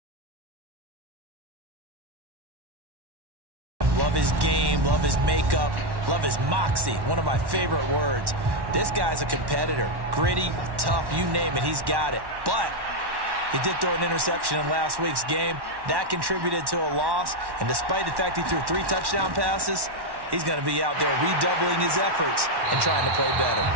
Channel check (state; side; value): late; left; 1.1 ms